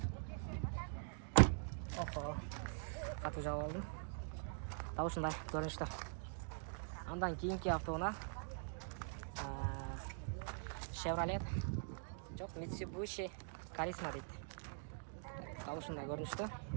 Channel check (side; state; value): left; silent; digital silence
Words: Охо. Қату жауып алдым. Таушындай көрінішті. Андан кейінгі автоуна Chevrolet. Жоқ, Mitsubishi Charisma дейді. Таушындай көрінішті.